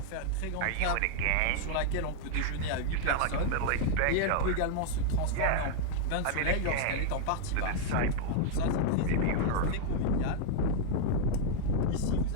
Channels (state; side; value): different; both; correlation 0.00